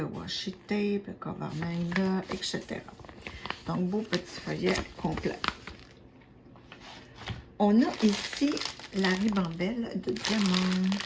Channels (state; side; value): identical; both; correlation 1.00